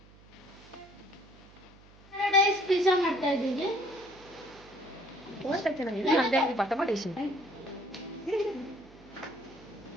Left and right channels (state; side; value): noise; right; hum, 24 dB below the sound